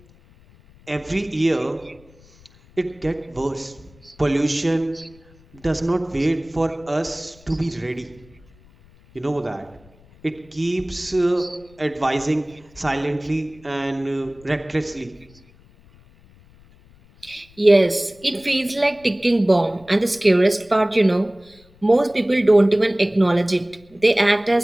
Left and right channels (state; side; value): noise; left; rumble, 27 dB below the sound